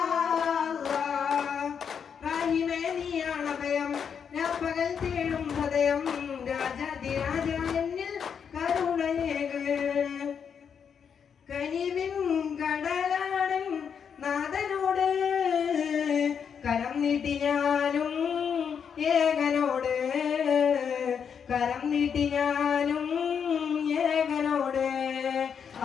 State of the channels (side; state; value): right; quieter; 7.2 dB